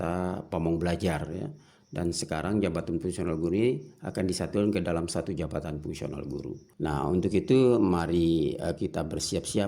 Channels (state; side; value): identical; both; correlation 1.00